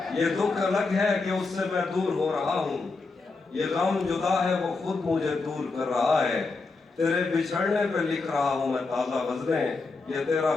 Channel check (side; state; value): right; quieter; 3.9 dB